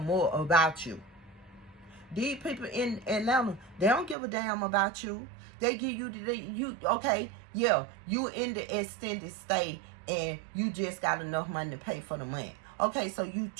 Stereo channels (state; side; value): drops out; left; at 4.2 s